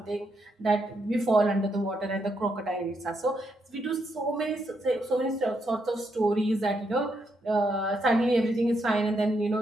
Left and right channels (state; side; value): normal; both; correlation 0.79